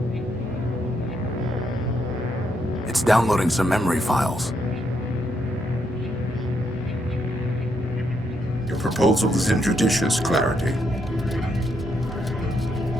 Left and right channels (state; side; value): normal; both; correlation 0.77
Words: It's downloading some memory files. Your proposal is injudicious, Clarity.